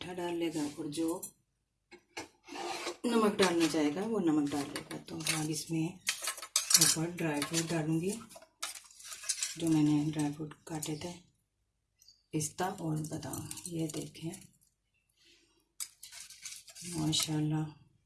डाल लेगा, और जो नमक डालना चाहेगा वो नमक डाल लेगा। तो अब इसमें ऊपर ड्राई फ्रूट डालूँगी, जो मैंने ड्राई फ्रूट काटे थे, पिस्ता और बादाम। ये देखें माशाल्लाह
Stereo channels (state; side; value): identical; both; correlation 1.00